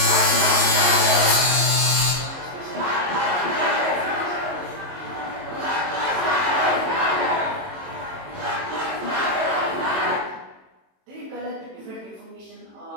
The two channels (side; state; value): left; late; 22 ms